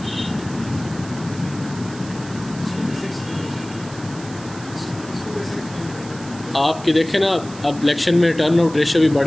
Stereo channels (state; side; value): noise; right; hiss, 17 dB below the sound